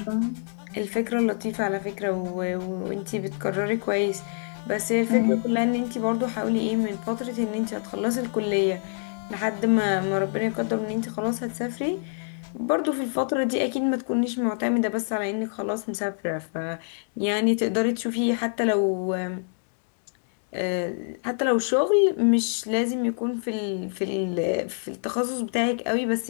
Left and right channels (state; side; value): silent; right; digital silence